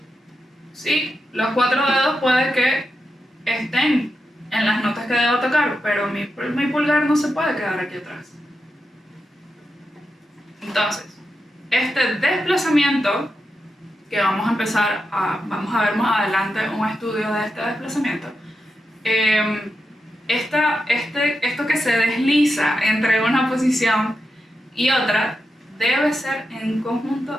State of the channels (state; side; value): normal; both; correlation 0.88